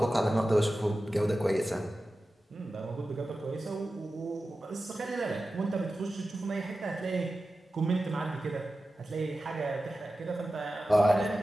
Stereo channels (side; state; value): both; normal; correlation 0.94